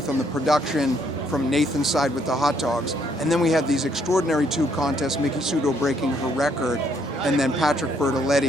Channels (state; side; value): normal; both; correlation 0.69